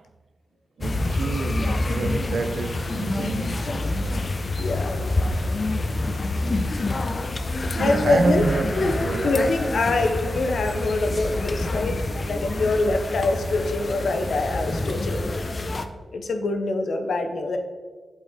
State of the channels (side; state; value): both; normal; correlation 0.90